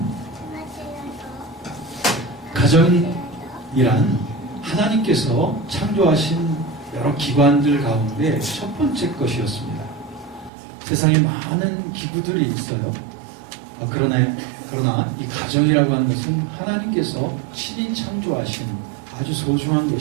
가정이란 하나님께서 창조하신 여러 기관들 가운데 첫 번째 것이었습니다. 세상에 많은 기구들이 있어요. 그러나 이 가정이라고 하는 것은 하나님께서 친히 창조하신 아주 소중한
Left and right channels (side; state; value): left; drops out; at 10.5 s